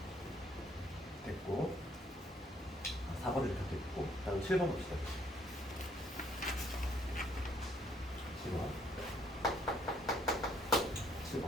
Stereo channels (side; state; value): both; normal; correlation 0.65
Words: 됐고 4번을 이렇게 됐고 다음 7번 봅시다. 7번